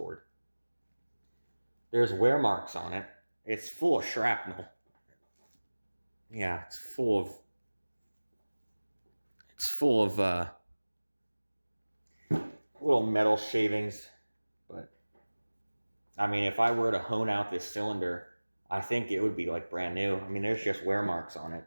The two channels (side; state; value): both; inverted; correlation -1.00